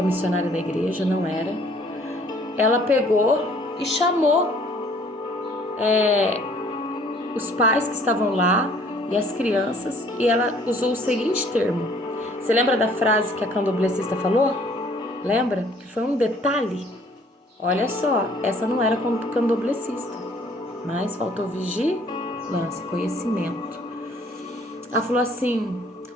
missionária da igreja, não era, ela pegou e chamou os pais que estavam lá e as crianças, e ela usou o seguinte termo. Você lembra da frase que a candomblessista falou? Lembra? Que foi um detalhe. Olha só, essa não era candomblessista, mas faltou vigilância, conhecimento. Ela falou assim,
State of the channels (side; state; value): both; normal; correlation 0.58